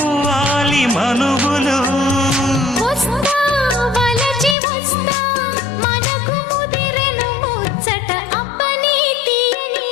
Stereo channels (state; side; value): drops out; right; at 4.5 s